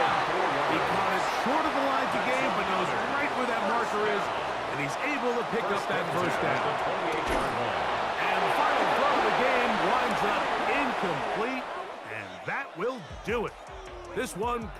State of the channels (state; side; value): identical; both; correlation 1.00